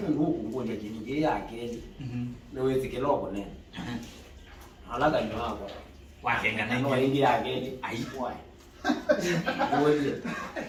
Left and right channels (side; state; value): both; identical; correlation 1.00